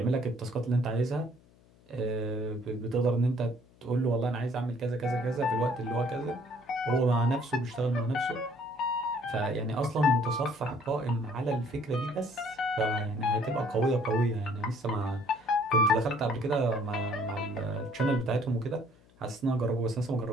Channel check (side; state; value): left; noise; hum, 28 dB below the sound